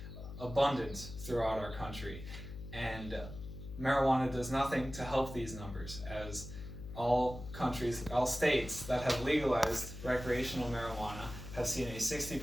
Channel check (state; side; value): noise; left; hum, 11 dB below the sound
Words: abundant throughout our country, and marijuana does nothing to help these numbers, as all states that have legalized recreational marijuana have seen a